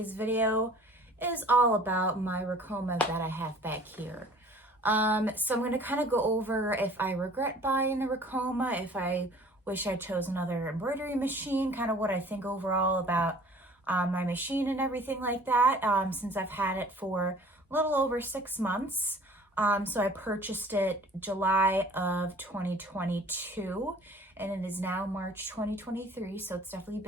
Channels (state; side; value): normal; both; correlation 0.49